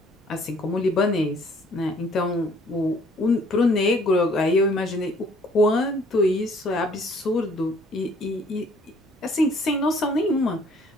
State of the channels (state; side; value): normal; both; correlation 0.59